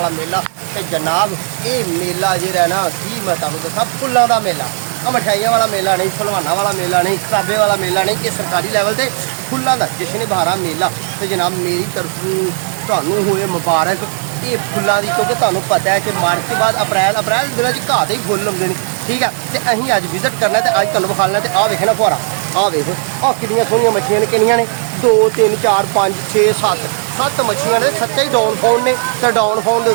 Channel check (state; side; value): silent; left; 70 dB below the other